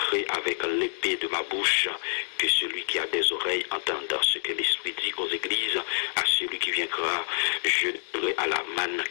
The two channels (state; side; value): silent; right; digital silence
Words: avec l'épée de ma bouche. Que celui qui a des oreilles entende ce que l'Esprit dit aux églises. À celui qui viendra, je donnerai à la manne